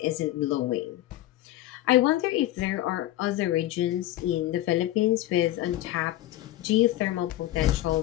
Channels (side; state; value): right; quieter; 14.8 dB